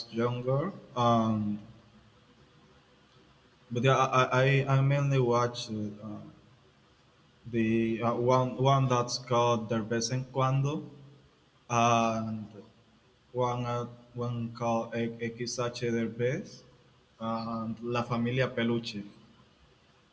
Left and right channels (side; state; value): both; identical; correlation 1.00